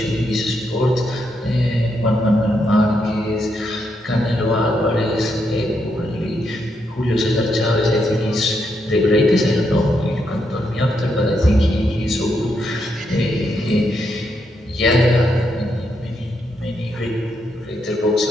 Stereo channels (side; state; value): both; normal; correlation 0.80